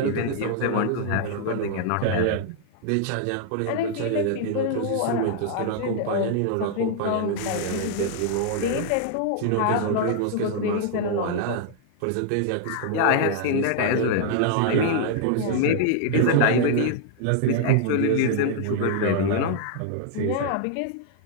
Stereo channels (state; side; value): different; both; correlation 0.00